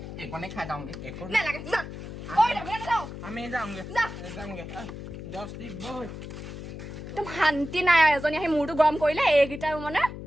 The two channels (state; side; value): noise; left; hum, 10 dB below the sound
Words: এইকণে খাই যাওঁগে নালাগে যা কৈ যাবি নে নাযাও আমি যামগে যা 10 বই একদম শান্তি নাই এজনী আহি মূৰটো গৰম কৰিলে এইকেইটা মানে